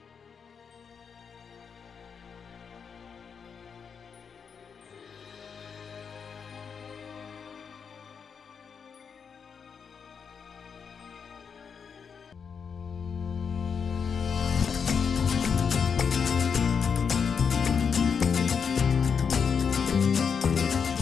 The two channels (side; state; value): right; quieter; 6.4 dB